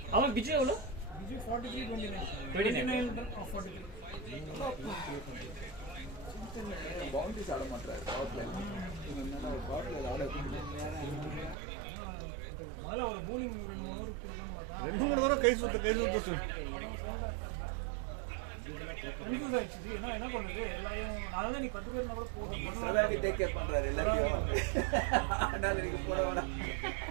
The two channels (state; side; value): drops out; left; at 11.6 s